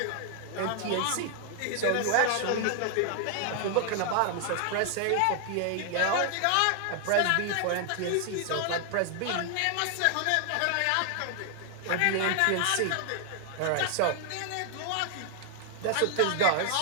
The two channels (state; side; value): different; both; correlation 0.00